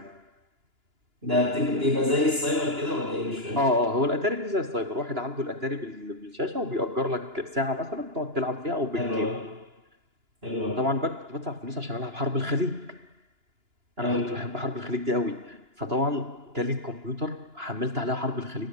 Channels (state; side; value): late; left; 2.9 ms